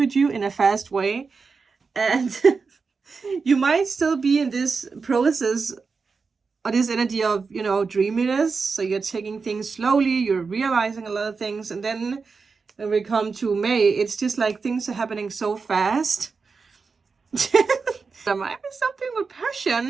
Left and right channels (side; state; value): left; quieter; 4.8 dB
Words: you in a fast way, and you might still be in this process or this energy of, you know, dreaminess. So you're taking things slowly, you're realizing a lot of things, and then when we come to May, it's just like things are happening so fast. There might be something with